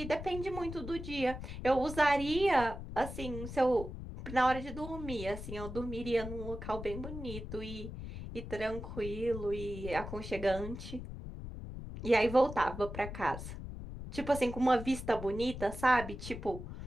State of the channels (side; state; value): left; noise; rumble, 9 dB below the sound